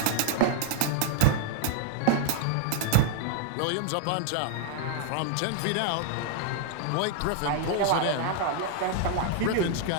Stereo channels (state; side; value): different; both; correlation -0.01